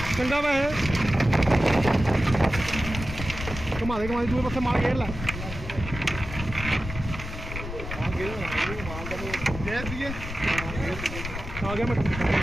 चंगा वैसे घुमा दे दूए पासे माल घेर लै आ गया मैं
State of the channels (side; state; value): left; noise; rumble, 8 dB below the sound